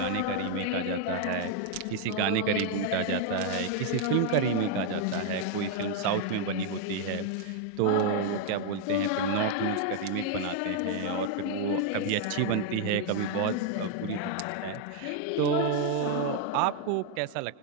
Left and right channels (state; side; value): different; both; correlation 0.00